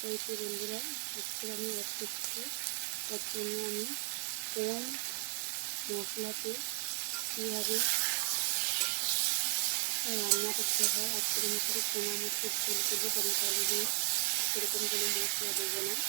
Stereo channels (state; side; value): silent; left; digital silence